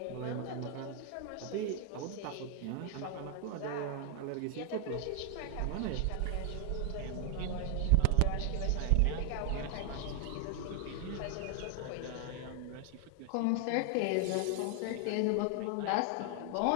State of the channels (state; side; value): different; both; correlation 0.00